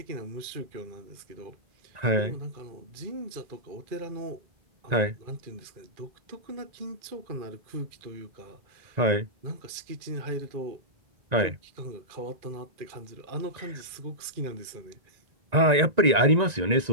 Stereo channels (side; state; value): left; late; 2.4 ms